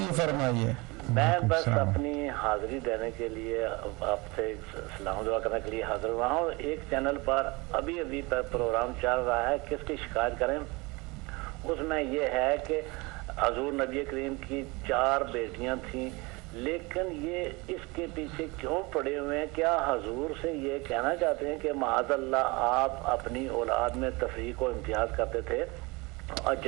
فرمائیے. میں بس اپنی حاضری دینے کے لیے آپ سے سلام دعا کرنے کے لیے حاضر ہوا ہوں. ایک چینل پر ابھی پروگرام چل رہا ہے کس کی شکایت کریں. اس میں یہ ہے کہ حضور نبی کریم کی 4 بیٹیاں تھیں لیکن یہ اس کے پیچھے کیوں پڑے ہوئے ہیں؟ کیا حضور سے یہ کہنا چاہتے ہیں کہ معاذ اللہ آپ اپنی اولاد میں تفریق و امتیاز کرتے تھے، اور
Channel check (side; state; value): left; quieter; 25.2 dB